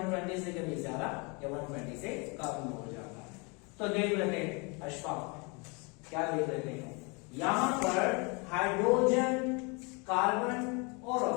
से कभी ज्यादा या 120 से कम हो जाता है। तो देख लेते हैं अशफाक, क्या देख लेते हैं, यहां पर हाइड्रोजन, कार्बन और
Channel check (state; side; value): quieter; right; 31.0 dB